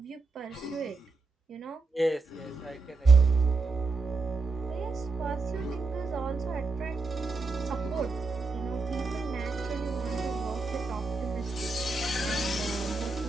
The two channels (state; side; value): quieter; left; 3.7 dB